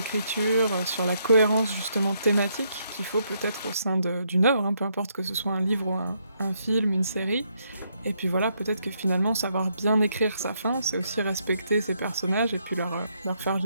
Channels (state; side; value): inverted; both; correlation -0.76